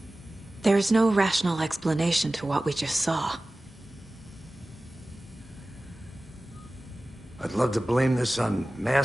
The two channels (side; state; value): both; normal; correlation 0.97